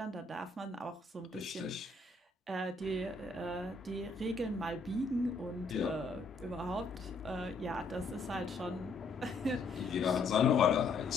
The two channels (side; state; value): right; quieter; 3.8 dB